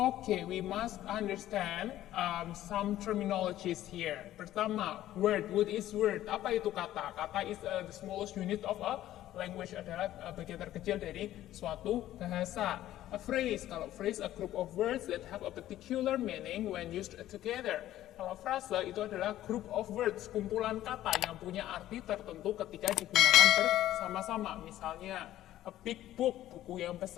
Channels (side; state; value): right; quieter; 13.5 dB